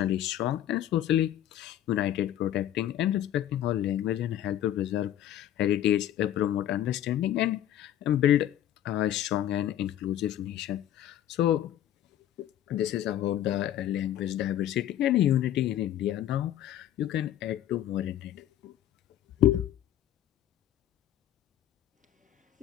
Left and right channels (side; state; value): right; quieter; 11.8 dB